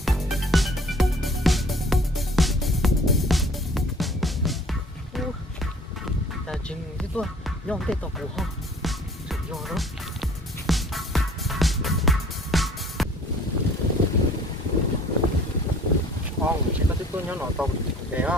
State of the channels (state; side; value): normal; both; correlation 0.52